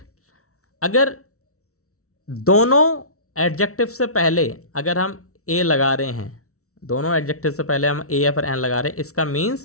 अगर दोनों एडजेक्टिव से पहले अगर हम ए लगा रहे हैं, दोनों एडजेक्टिव से पहले हम ए या फिर एन लगा रहे हैं, इसका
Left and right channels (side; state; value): right; late; 0.64 ms